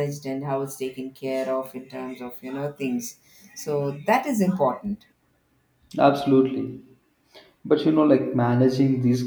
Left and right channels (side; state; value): both; identical; correlation 1.00